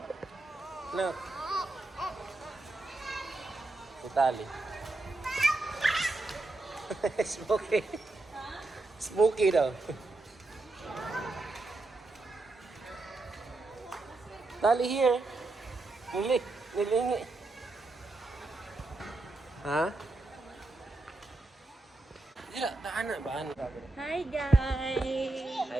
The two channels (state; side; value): quieter; left; 3.0 dB